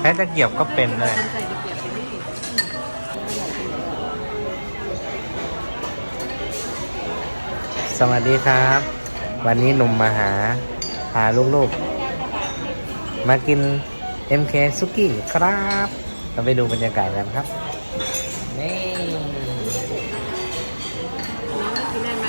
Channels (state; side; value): inverted; both; correlation -1.00